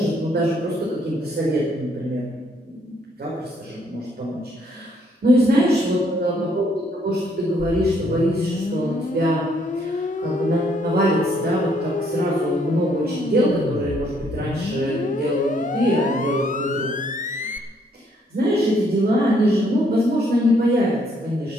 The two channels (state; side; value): normal; both; correlation 0.69